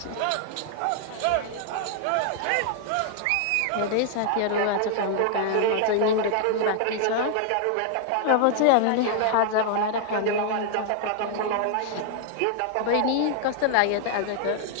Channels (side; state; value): both; different; correlation 0.00